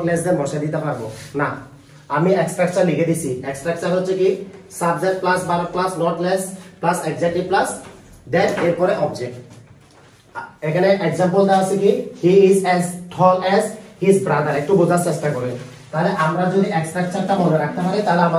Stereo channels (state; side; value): identical; both; correlation 1.00